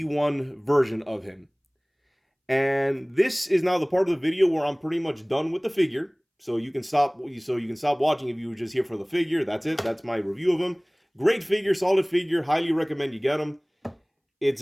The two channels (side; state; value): both; identical; correlation 1.00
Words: version of him. And this is now the part of the video where I'm pretty much done with the figure. So you can stop watching if you were just here for the figure. That's it. That's my review of him. Great figure, solid figure. Highly recommend you get him.